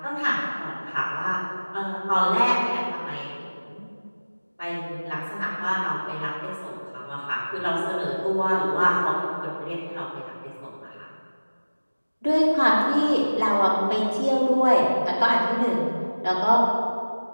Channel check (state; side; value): inverted; both; correlation -1.00